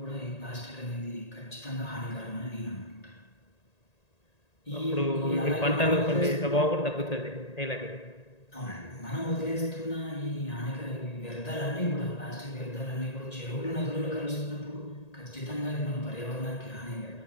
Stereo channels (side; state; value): right; late; 1.8 ms